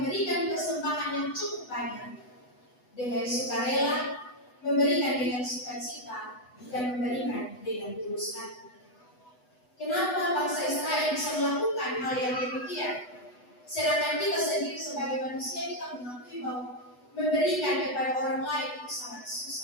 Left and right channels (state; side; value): late; right; 8.1 ms